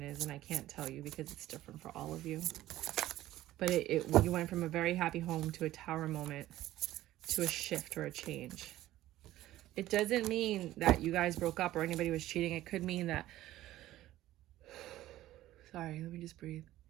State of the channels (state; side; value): quieter; left; 14.9 dB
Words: is, and I can't tell you because it's different for all of you. But you went from a very happy home to a tower moment, to a shift or a change. It doesn't mean that you guys broke up or anybody was cheating. It could mean that... Sorry, let me just breathe.